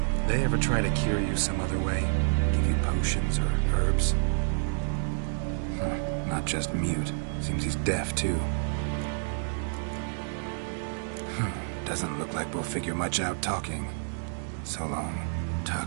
They ever try to cure you some other way? Give you potions or herbs? Not just mute. Seems he's deaf, too. Doesn't look like we'll figure much out talking. So long.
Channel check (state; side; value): silent; left; digital silence